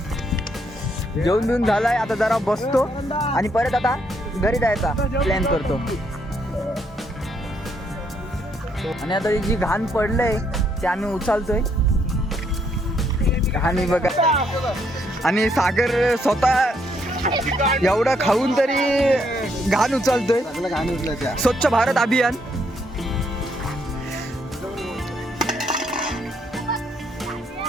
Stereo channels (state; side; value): normal; both; correlation 0.73